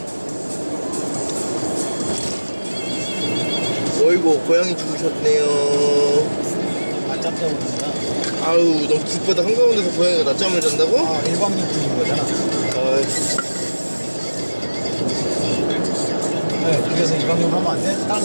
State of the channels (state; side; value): inverted; both; correlation -1.00